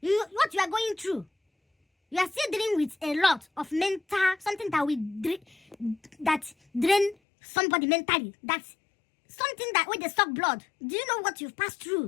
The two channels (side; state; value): right; drops out; at 7.2 s